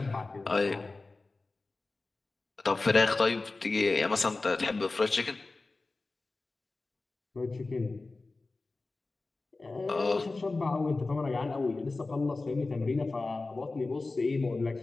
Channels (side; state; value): right; quieter; 3.5 dB